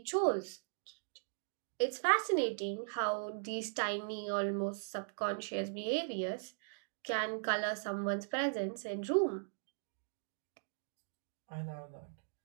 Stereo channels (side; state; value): left; silent; digital silence